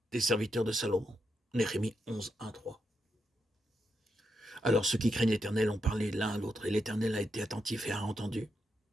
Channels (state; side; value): normal; both; correlation 0.84